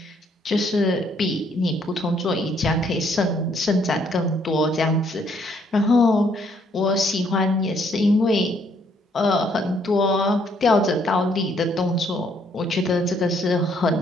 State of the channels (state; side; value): normal; both; correlation 0.68